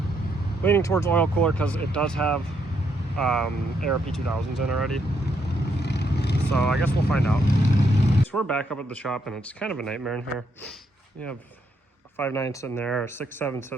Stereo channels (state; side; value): normal; both; correlation 0.75